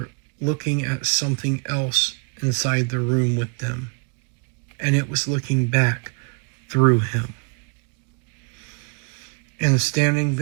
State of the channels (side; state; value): left; quieter; 35.7 dB